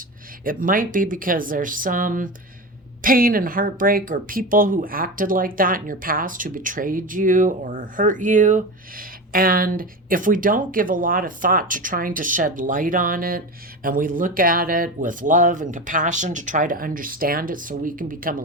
it might be because there's some pain and heartbreak, or people who acted like that in your past who betrayed you or hurt you. And if we don't give a lot of thought to trying to shed light on it, and we look at it with love and compassion to try to understand it so we can become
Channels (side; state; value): both; normal; correlation 0.24